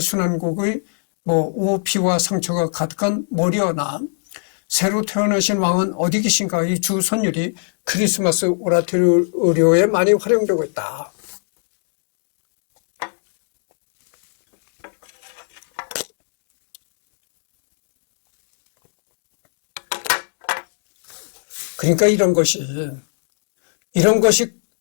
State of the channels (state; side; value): silent; right; digital silence